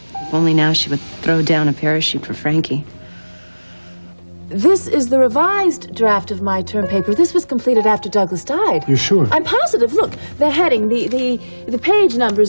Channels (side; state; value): both; inverted; correlation -1.00